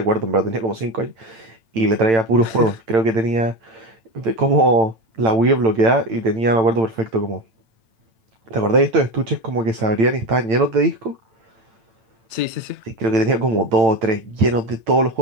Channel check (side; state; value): left; late; 8.9 ms